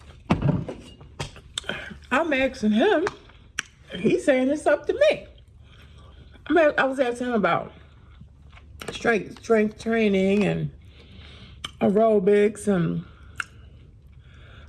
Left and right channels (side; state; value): both; identical; correlation 1.00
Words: I'm asking him, he's saying it's up to me. I was asking him about strength training and aerobics and